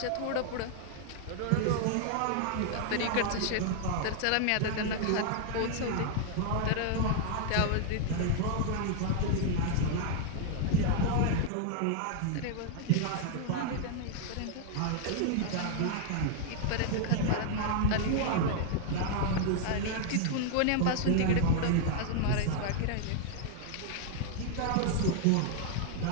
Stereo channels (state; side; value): different; both; correlation 0.00